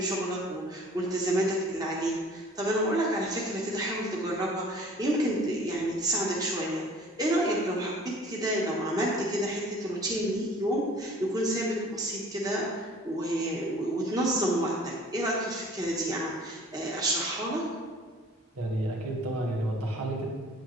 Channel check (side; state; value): both; normal; correlation 0.50